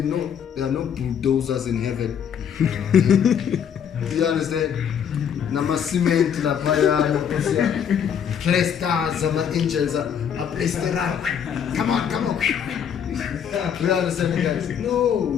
know there are no bulldozers in heaven. Do you understand? Nama cement la paya, stars, angels are placed around. Come on. Do you understand, guys?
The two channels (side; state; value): right; quieter; 8.2 dB